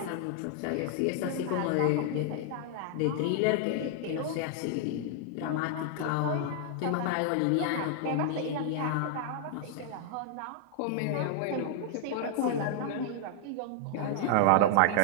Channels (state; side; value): different; both; correlation 0.00